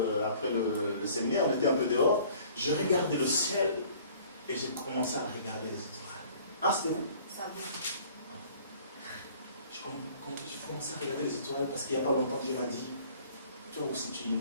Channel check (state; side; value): inverted; both; correlation -0.52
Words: séminaire, on était un peu dehors. Je regardais le ciel et j'ai commencé à regarder les étoiles. Ah, c'était où? Je commençais à regarder les étoiles parce qu'il n'y a pas longtemps, Dieu m'a dit, toi aussi tu